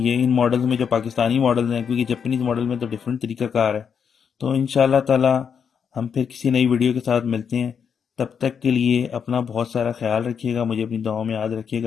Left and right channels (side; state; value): right; quieter; 7.0 dB